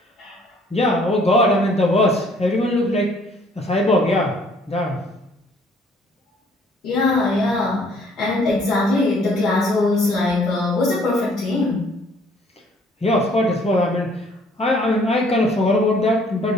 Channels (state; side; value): normal; both; correlation 0.60